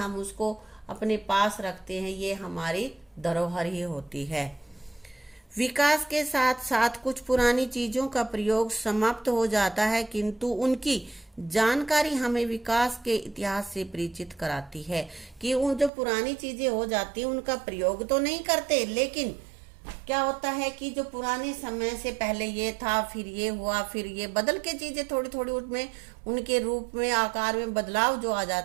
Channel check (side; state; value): left; drops out; at 15.9 s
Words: उसको अपने पास रखते हैं। ये हमारी धरोहर ही होती है। विकास के साथ साथ कुछ पुरानी चीजों का प्रयोग समाप्त हो जाता है, किंतु उनकी जानकारी हमें विकास के इतिहास से परिचित कराती है। कि उन जो पुरानी चीजें हो जाती हैं उनका प्रयोग तो नहीं करते, लेकिन क्या होता है कि जो पुराने समय से पहले ये था, फिर ये हुआ, फिर ये बदल के चीजें थोड़ी थोड़ी उसमें उनके रूप में आकार में बदलाव जो आ